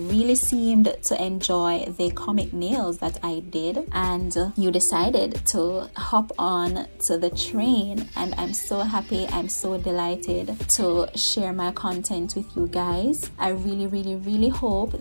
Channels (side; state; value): both; inverted; correlation -1.00